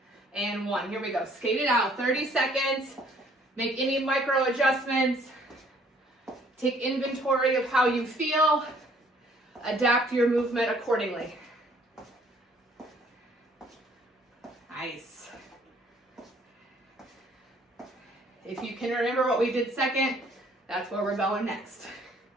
and 1. Here we go. Skate it out. 30 seconds. Make any micro adjustments. Take inventory of how you feel. Adapt your movement accordingly. Nice. If you can remember what we did second, that's where we're going next.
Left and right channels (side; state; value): both; normal; correlation 0.61